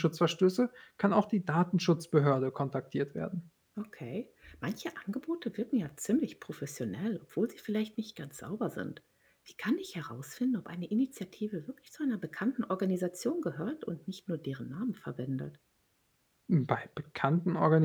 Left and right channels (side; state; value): both; identical; correlation 1.00